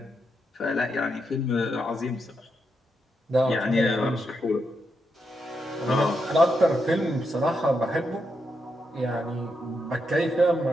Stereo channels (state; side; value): normal; both; correlation 0.83